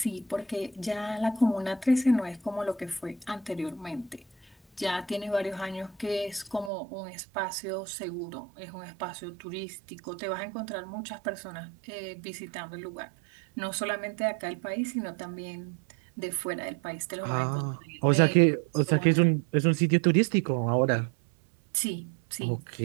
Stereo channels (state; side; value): drops out; left; at 6.7 s